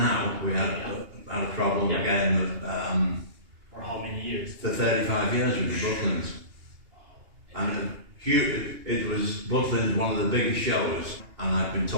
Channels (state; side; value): late; left; 2.8 ms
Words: We had a problem again. For how many years? For 35 years with the Butlins. And it was Butlins, one of the biggest shows, and I've been